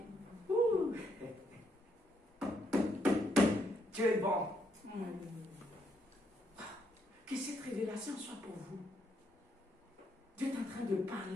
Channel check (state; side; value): normal; both; correlation 0.75